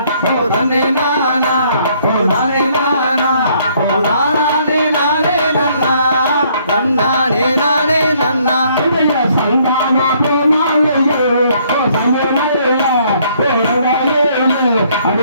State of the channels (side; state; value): both; inverted; correlation -0.65